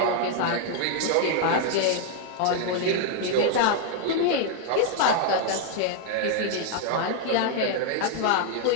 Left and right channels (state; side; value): different; both; correlation 0.00